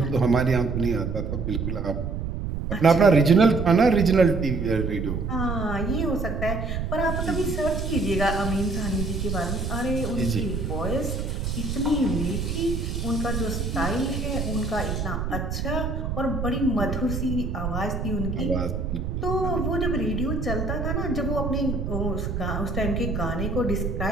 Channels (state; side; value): noise; right; rumble, 3 dB below the sound